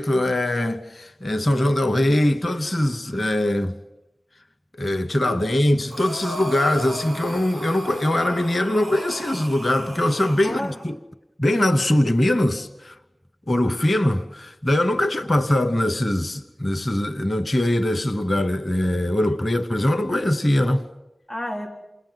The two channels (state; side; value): normal; both; correlation 0.96